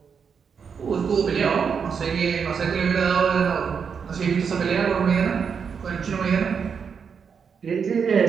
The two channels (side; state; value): left; quieter; 6.4 dB